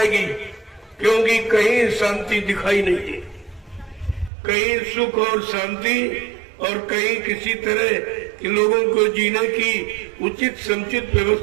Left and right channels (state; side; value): drops out; left; at 4.3 s